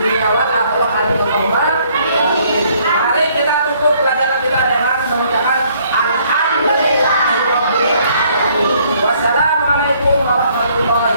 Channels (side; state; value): both; inverted; correlation -0.64